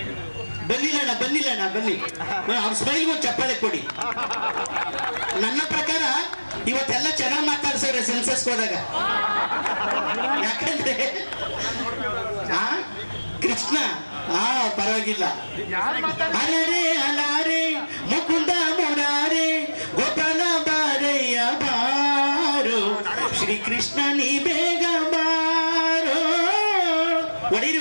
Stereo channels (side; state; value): both; inverted; correlation -1.00